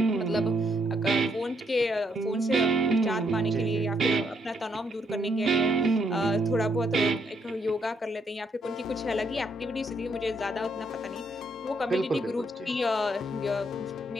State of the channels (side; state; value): both; normal; correlation 0.74